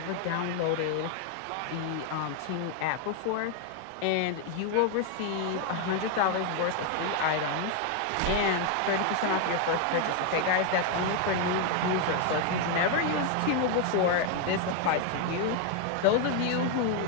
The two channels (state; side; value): different; both; correlation 0.01